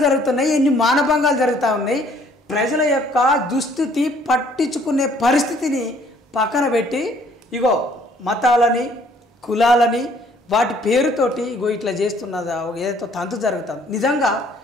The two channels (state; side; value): normal; both; correlation 0.61